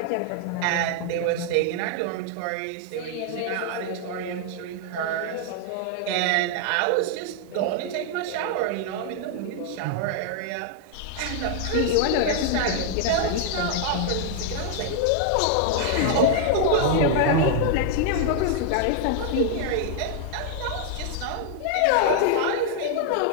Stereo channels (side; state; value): both; different; correlation 0.00